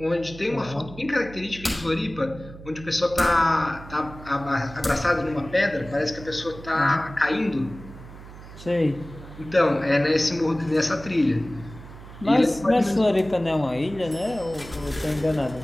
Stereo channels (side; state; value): right; noise; hum, 16 dB below the sound